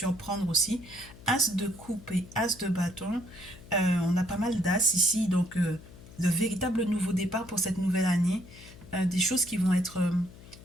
aussi. As de coupe et as de bâton, on a pas mal d'as ici, donc de véritables nouveaux départs pour cette nouvelle année. Des choses qui vont être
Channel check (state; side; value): noise; left; hum, 19 dB below the sound